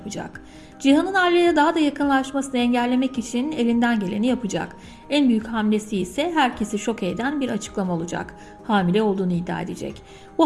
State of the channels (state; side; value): identical; both; correlation 1.00